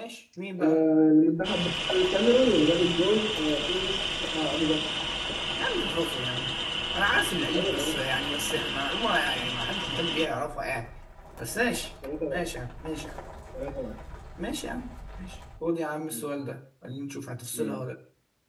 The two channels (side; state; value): both; identical; correlation 1.00